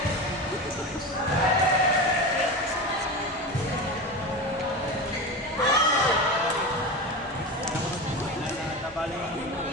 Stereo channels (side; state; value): both; normal; correlation 0.24